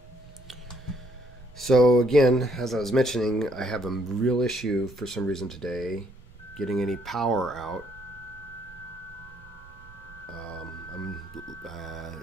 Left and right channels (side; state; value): right; noise; rumble, 23 dB below the sound